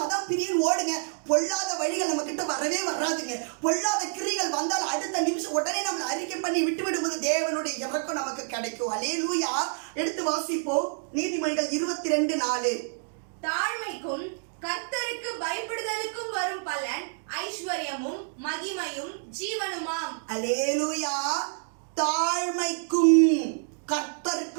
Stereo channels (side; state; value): left; silent; digital silence